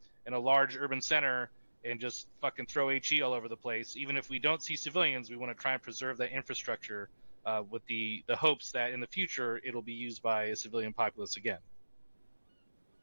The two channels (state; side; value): inverted; both; correlation -1.00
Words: a large urban center and just fucking throw HE all over the place. Even if we don't see civilians, we want to try and preserve that infrastructure with the hopes that in the future it'll be used by a civilian populace again.